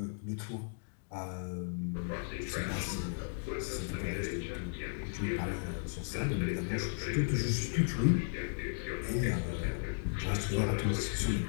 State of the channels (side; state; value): right; silent; digital silence